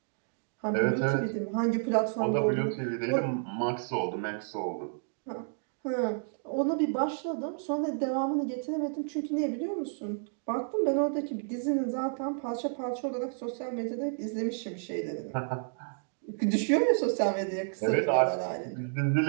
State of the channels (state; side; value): silent; left; digital silence